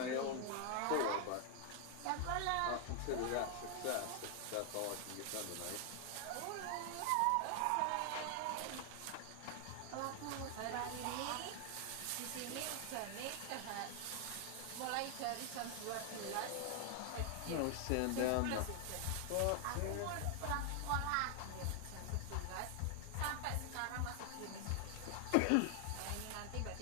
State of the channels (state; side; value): different; both; correlation 0.00